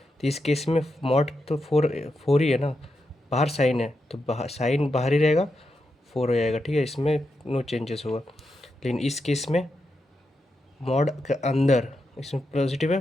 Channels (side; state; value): both; normal; correlation 0.86